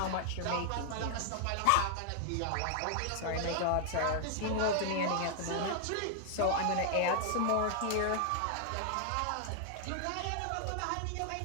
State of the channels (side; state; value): both; different; correlation 0.00